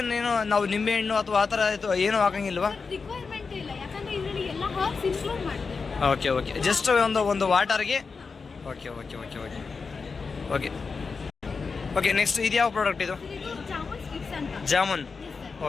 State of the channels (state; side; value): quieter; right; 4.8 dB